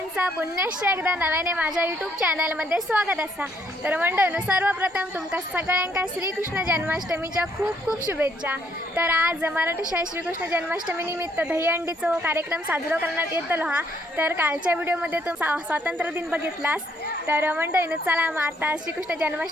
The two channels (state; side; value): normal; both; correlation 0.70